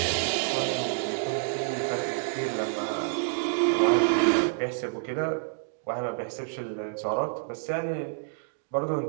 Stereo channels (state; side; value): silent; left; digital silence